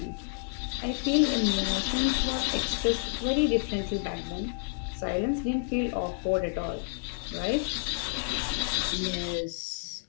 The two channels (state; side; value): silent; right; 58 dB below the other